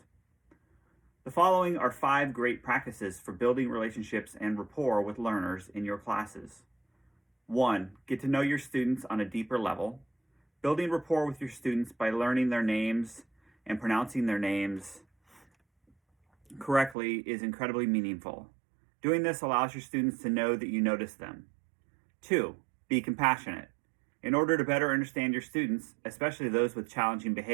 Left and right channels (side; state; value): left; drops out; at 16.9 s